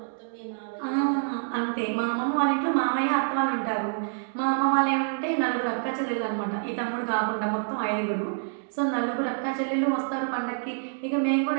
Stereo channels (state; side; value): silent; left; digital silence